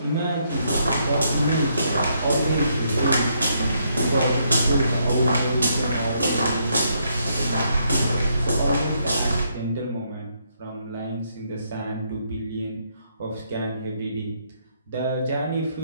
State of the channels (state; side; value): inverted; both; correlation -0.74